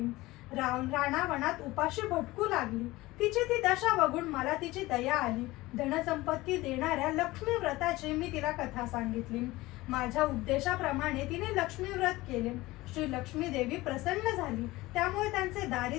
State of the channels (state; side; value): quieter; right; 19.4 dB